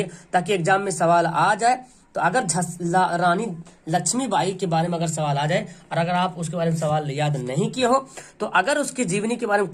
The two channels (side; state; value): both; identical; correlation 1.00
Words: ताकि एग्जाम में सवाल आ जाए। तो अगर रानी लक्ष्मीबाई के बारे में अगर सवाल आ जाए और अगर आप उसके बारे में सवाल याद नहीं किए हो, तो अगर उसकी जीवनी के बारे में